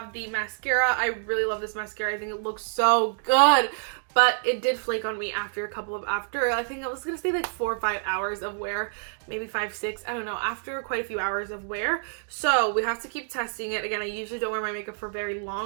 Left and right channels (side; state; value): left; silent; digital silence